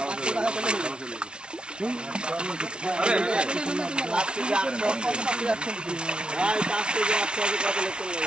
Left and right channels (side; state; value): left; late; 0.056 ms